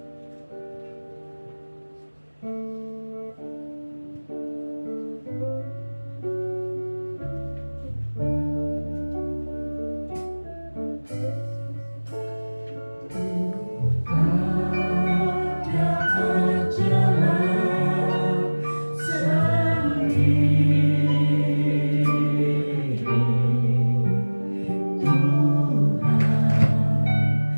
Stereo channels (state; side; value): inverted; both; correlation -1.00